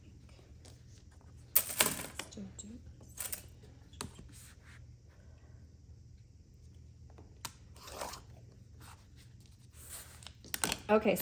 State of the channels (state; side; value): identical; both; correlation 1.00